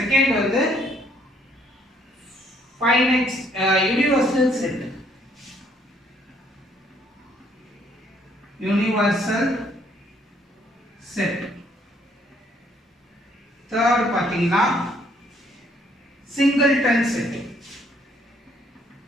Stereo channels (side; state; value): both; normal; correlation 0.66